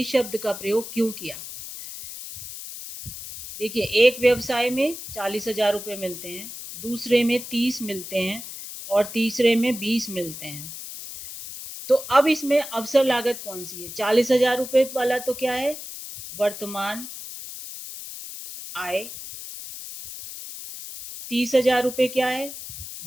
शब्द का प्रयोग क्यों किया। देखिए, एक व्यवसाय में 40,000 रुपये मिलते हैं, दूसरे में 30 मिलते हैं, और तीसरे में 20 मिलते हैं। तो अब इसमें अवसर लागत कौन सी है? 40,000 रुपये वाला तो क्या है? वर्तमान आय। 30,000 रुपये क्या है?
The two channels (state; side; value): noise; left; hiss, 11 dB below the sound